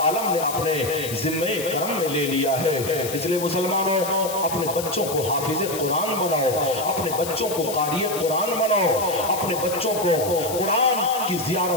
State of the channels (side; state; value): left; noise; hiss, 9 dB below the sound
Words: आलम ने अपने जिम्मे करम में ले लिया है। इसलिए मुसलमानों, अपने बच्चों को हाफिज कुरान बनाओ, अपने बच्चों को कारी कुरान बनाओ, अपने बच्चों को कुरान की